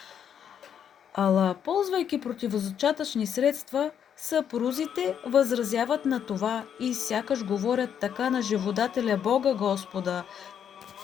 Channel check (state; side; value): quieter; right; 8.6 dB